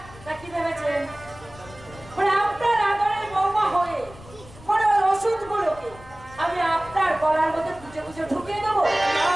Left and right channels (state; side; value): noise; left; rumble, 20 dB below the sound